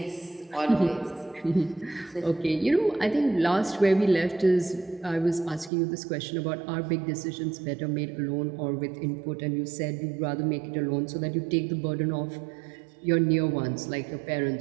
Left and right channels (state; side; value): drops out; left; at 5.7 s